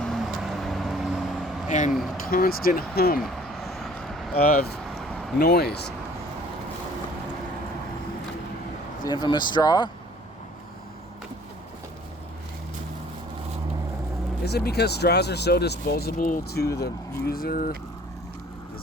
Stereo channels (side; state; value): both; normal; correlation 0.53